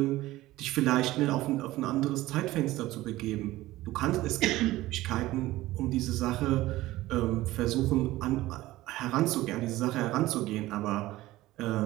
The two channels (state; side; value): quieter; left; 17.1 dB